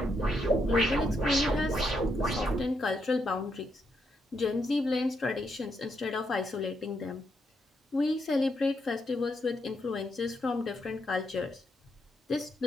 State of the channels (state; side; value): normal; both; correlation 0.79